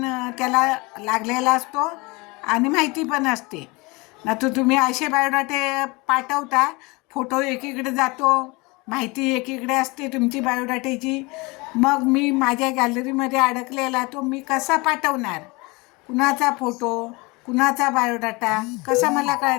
त्याला लागलेला असतो आणि माहिती पण असते. ना तर तुम्ही असे बायोडाटे पाठवता, फोटो एकीकडे जातो, माहिती एकीकडे असते तुमची बायोडाट्याची. मग मी माझ्या गॅलरीमध्ये अडकलेला तो मी कसा पाठवणार? कुणाचा फोटो, कुणाचा बायोडाटा कसा मला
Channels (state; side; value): quieter; right; 25.6 dB